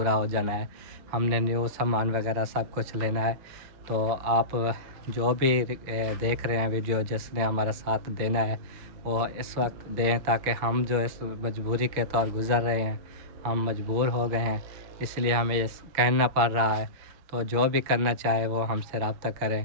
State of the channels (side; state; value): left; late; 6.8 ms